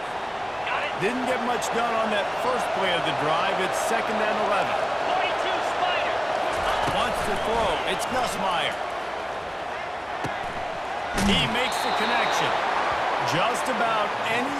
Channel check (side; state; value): both; identical; correlation 1.00